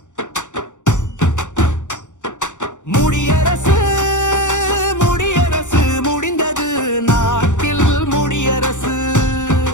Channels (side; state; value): right; late; 0.85 ms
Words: முடியரசு முடியரசு முடிந்தது நாட்டில் முடியரசு